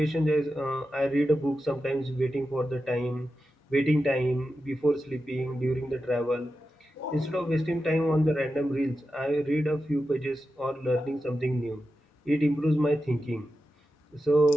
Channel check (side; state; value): both; normal; correlation 0.90